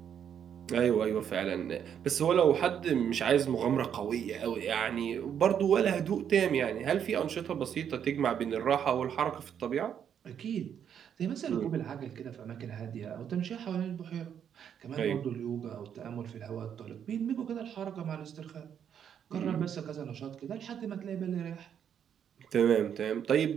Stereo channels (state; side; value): quieter; left; 8.6 dB